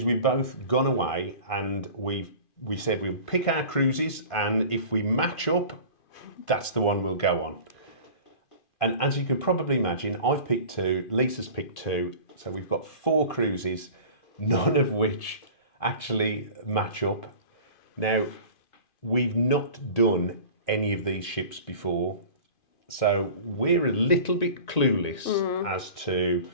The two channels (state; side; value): late; right; 2.5 ms